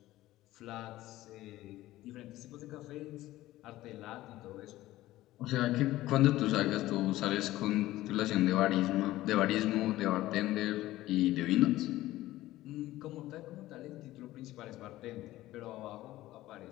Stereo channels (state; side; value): quieter; right; 16.1 dB